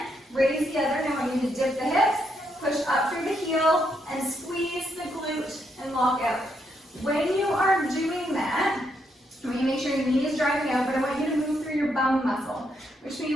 raise the other. Now I want you to dip the hips, push up through the heel, and squeeze the glute and lock out. When you are doing that, I want you to make sure your knee is driving out, but I want you to move through your bum muscle, which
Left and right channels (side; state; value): both; normal; correlation 0.78